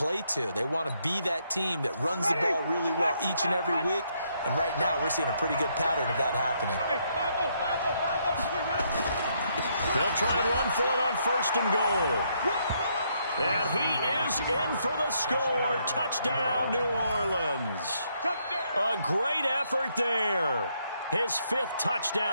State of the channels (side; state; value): both; inverted; correlation -0.74